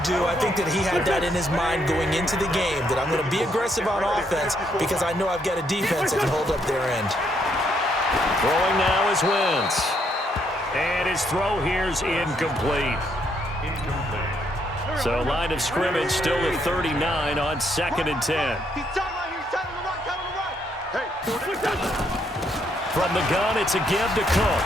do. I think that he had that in his mind going into the game, that I'm going to be aggressive on offense because I know I've got a defense that can hold up their end. Throwing now is Wentz. And his throw here's incomplete. So line of scrimmage still at 39 on 2nd and 10. From the gun, it's a give to Cook.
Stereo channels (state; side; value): normal; both; correlation 0.73